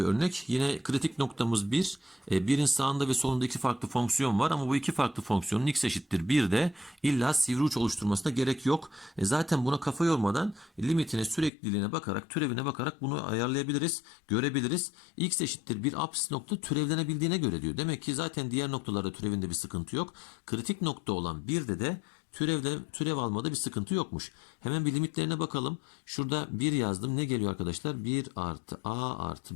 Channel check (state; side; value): drops out; right; at 11.5 s